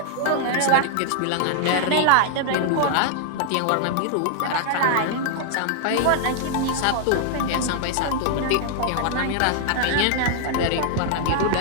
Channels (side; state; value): both; different; correlation 0.00